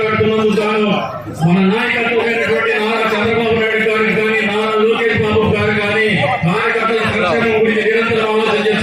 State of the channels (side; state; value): right; noise; rumble, 30 dB below the sound